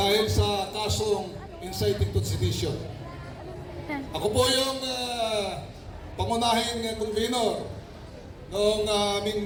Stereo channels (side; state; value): both; identical; correlation 1.00